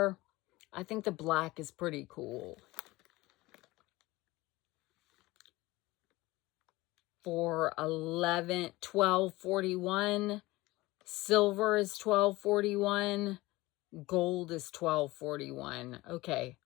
I think the black is pretty cool. For $12.41. Silver is $12.41. Gold is $12.41. Okay.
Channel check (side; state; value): right; quieter; 20.0 dB